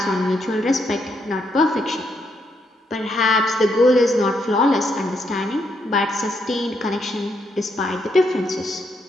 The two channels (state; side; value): normal; both; correlation 0.77